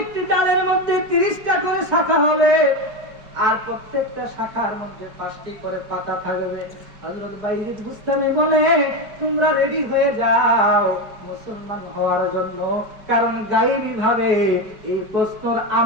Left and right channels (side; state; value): left; late; 4.8 ms